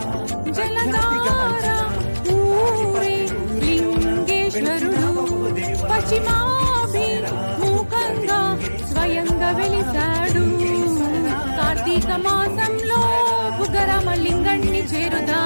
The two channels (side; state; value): both; inverted; correlation -1.00